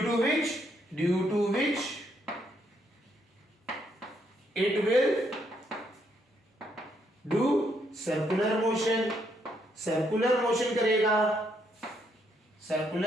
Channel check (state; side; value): normal; both; correlation 0.74